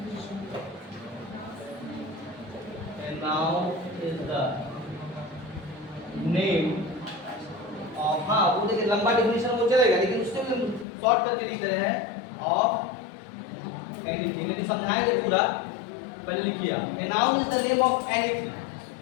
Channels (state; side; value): drops out; right; at 10.9 s